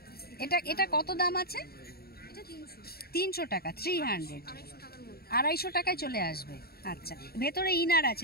এটা কত দাম আছে? 300 টাকা। 300, 250 টাকায় চলে আসবে। আচ্ছা, ভেতরে ইনার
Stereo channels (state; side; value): late; right; 0.45 ms